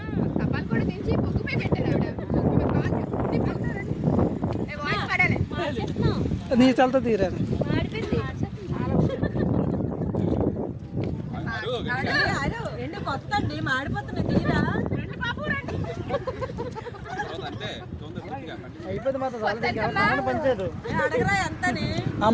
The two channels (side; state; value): both; identical; correlation 1.00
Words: నీ చల్తో తీరాను. కొత్త అండి మాడిపోతున్నాయి తీరా అయిపోయింది మాత్రం పంచారు. అడగరా ఎంతని ఆ